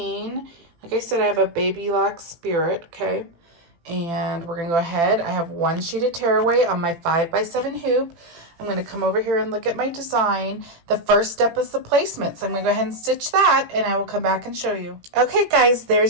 Like I said, I have a Baby Lock Spirit, okay? And we're going to go ahead. I have one sheet of tearaway on my 5x7 hoop. I'm going to come over here and look at my design. The first step is the placement. So I'm going to go ahead and stitch that, and I will come back and show you. Okay, guys,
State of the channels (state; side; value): late; left; 18 ms